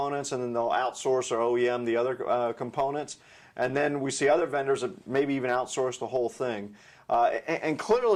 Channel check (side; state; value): both; identical; correlation 1.00